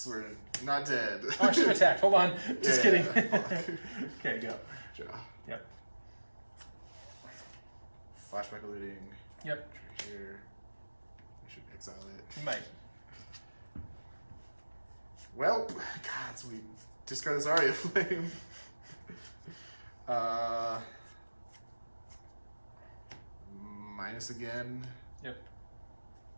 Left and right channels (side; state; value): both; inverted; correlation -1.00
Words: we're not dead. Oh, I should have attacked. Hold on. Just kidding. Yeah. Okay, go. Draw. Yep. Flashback eluding. Yep. Here. I should exile it. You might. Well, God, so we discard this Aria Flame. Minus again. Yep.